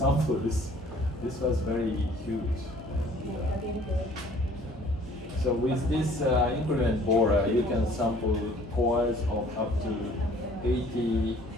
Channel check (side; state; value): both; normal; correlation 0.54